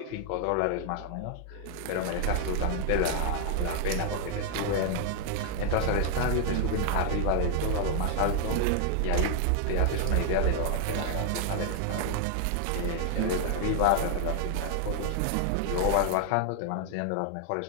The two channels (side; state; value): both; different; correlation 0.00